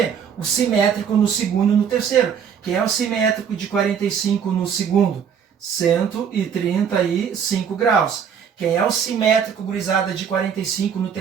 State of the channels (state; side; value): quieter; left; 7.5 dB